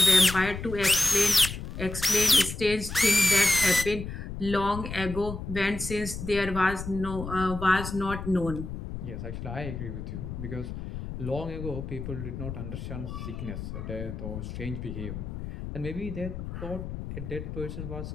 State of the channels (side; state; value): left; noise; rumble, 7 dB below the sound